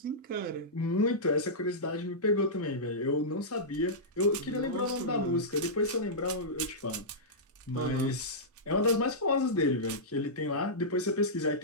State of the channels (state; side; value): normal; both; correlation -0.13